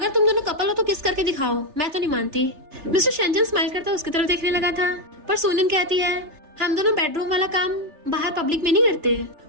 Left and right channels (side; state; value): left; late; 3.3 ms